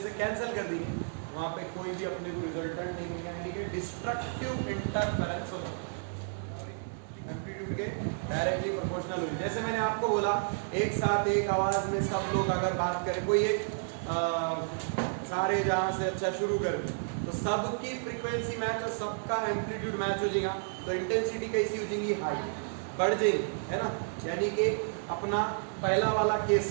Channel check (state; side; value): silent; left; digital silence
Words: से कैंसिल कर दिए, वहां पे कोई भी अपने को रिजल्टेंट नहीं मिलेगा, यानी कि डिस्ट्रक्टिव इंटरफेरेंस होता है, एम्पलीट्यूड के डायरेक्टली प्रोपोर्शनल होगी। जैसे मैंने आपको बोला एक साथ एक आवाज में सब लोग अगर बात करें, कोई एक सारे जहां से अच्छा शुरू कर तो सबकी फ्रीक्वेंसी मैच और सबका एम्पलीट्यूड मैच हो जाएगा, तो इंटेंसिटी कैसी हो जाएगी, हाई बढ़ जाएगी, है ना। यानी कि अपना पहला वाला केस